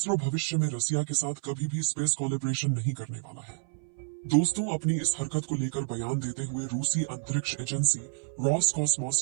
भविष्य में रसिया के साथ कभी भी स्पेस कोलैबोरेशन नहीं करने वाला है। दोस्तों, अपनी इस हरकत को लेकर बयान देते हुए रूसी अंतरिक्ष एजेंसी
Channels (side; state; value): left; silent; 58 dB below the other